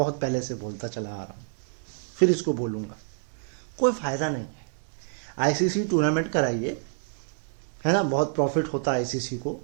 पहले से बोलता चला आ रहा हूं, फिर इसको बोलूंगा, कोई फायदा नहीं है। आईसीसी टूर्नामेंट कराइए, है ना, बहुत प्रॉफिट होता है आईसीसी को,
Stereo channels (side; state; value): left; silent; digital silence